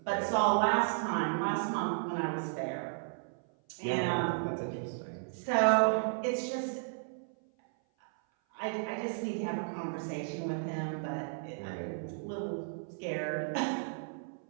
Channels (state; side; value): silent; left; 55 dB below the other